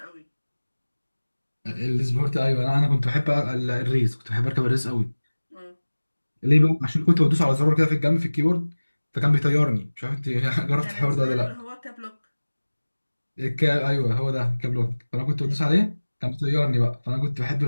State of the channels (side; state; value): both; inverted; correlation -1.00